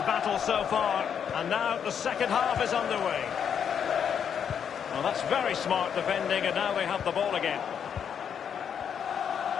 so far, and now the second half is underway. Well, that's very smart defending, and now they have the ball again.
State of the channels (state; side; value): quieter; right; 7.9 dB